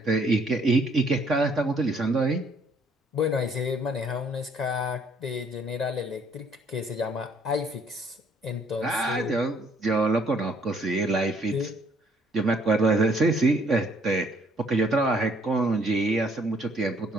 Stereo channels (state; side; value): normal; both; correlation 0.64